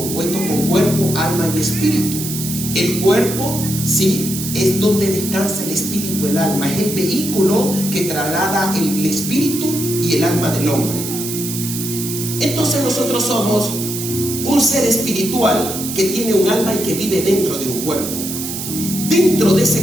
con cuerpo, alma y espíritu. El cuerpo, sí, es donde descansa el espíritu, el alma. Es el vehículo que traslada el espíritu y el alma del hombre. Entonces nosotros somos un ser espiritual que tiene un alma y que vive dentro de un cuerpo. Dentro de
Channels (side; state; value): right; noise; hiss, 6 dB below the sound